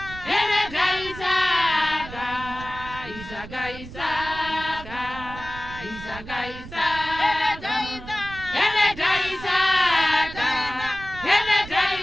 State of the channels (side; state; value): right; noise; rumble, 14 dB below the sound